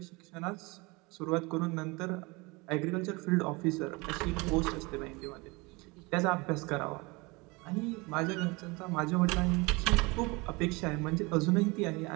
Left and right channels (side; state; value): left; quieter; 25.9 dB